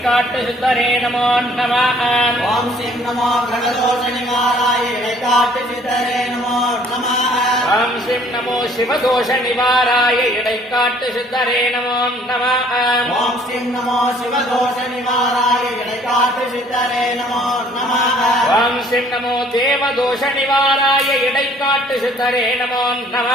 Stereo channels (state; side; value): normal; both; correlation 0.58